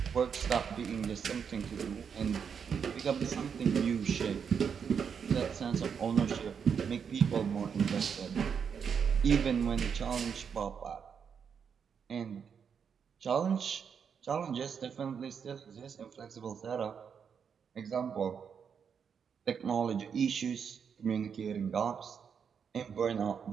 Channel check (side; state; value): left; quieter; 6.9 dB